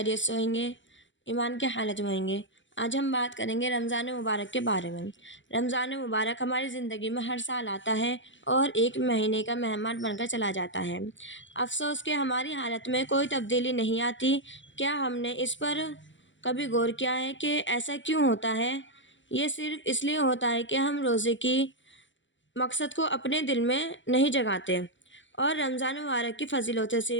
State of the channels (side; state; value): right; late; 0.55 ms